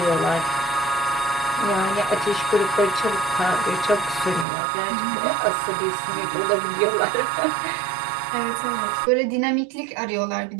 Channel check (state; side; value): drops out; left; at 4.5 s